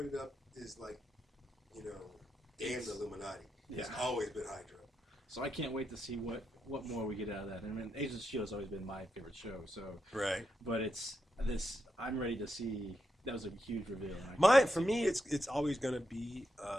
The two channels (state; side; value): normal; both; correlation 0.84